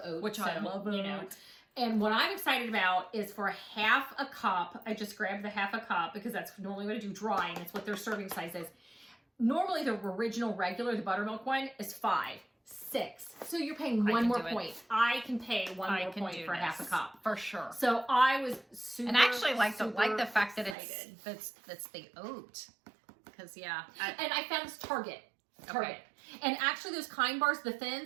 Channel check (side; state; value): left; drops out; at 20.8 s